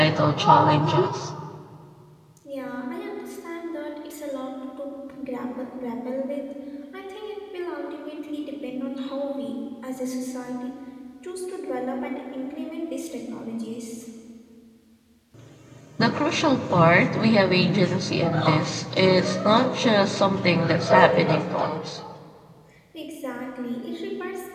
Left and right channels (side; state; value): both; identical; correlation 1.00